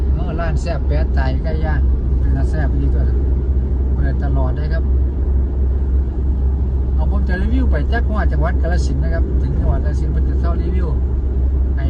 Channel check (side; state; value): both; identical; correlation 1.00